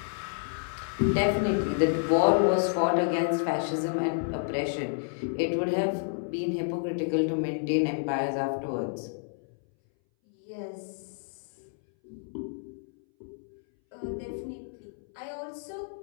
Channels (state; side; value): silent; right; 58 dB below the other